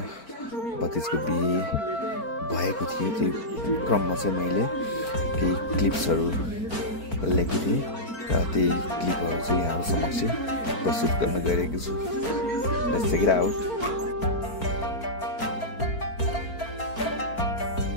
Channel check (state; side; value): late; right; 4.5 ms